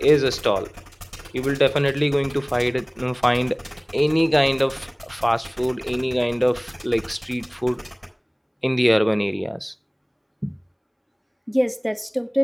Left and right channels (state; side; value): identical; both; correlation 1.00